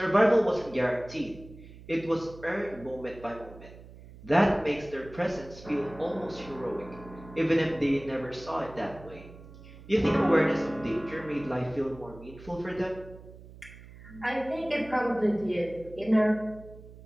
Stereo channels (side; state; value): right; noise; hum, 18 dB below the sound